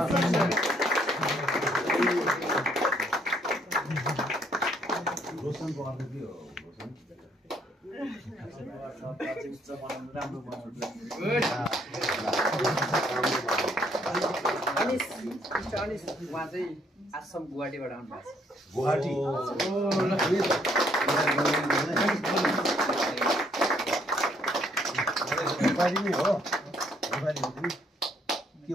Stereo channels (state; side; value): normal; both; correlation 0.68